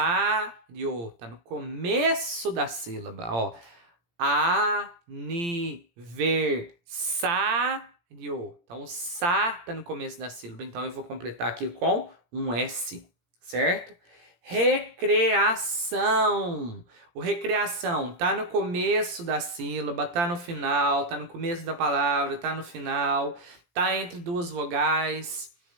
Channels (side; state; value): left; late; 17 ms